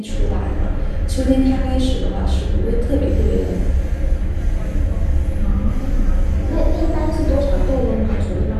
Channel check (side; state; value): both; identical; correlation 1.00